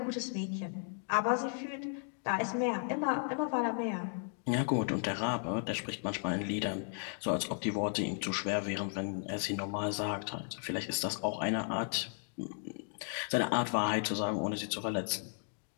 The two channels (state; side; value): silent; right; 54 dB below the other